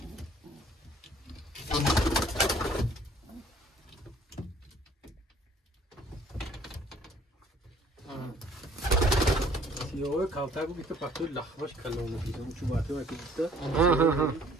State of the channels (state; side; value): normal; both; correlation 0.57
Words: سیاه کاوتر بود که پاکتو لخباش کلام می‌کردم چون باعث می‌شد که